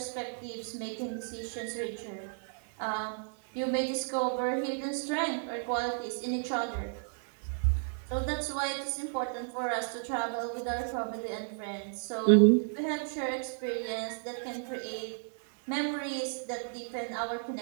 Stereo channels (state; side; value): silent; left; 56 dB below the other